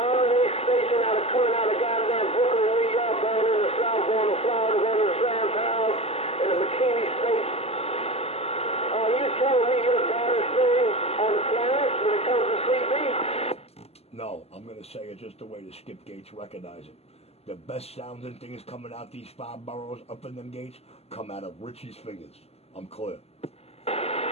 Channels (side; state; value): right; late; 0.29 ms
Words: station coming out of goddamn Brooklyn, New York, going in the South, going to Florida, going to the Sand Pals, in the McKinney State. You telling me you're the baddest thing on the planet when it comes to CB? No, I'm going to say it just the way the skip gates recognize it. The best sounding things coming out these 5 boroughs up in them gates come out of Richie's fingers. I'm clear. Yeah,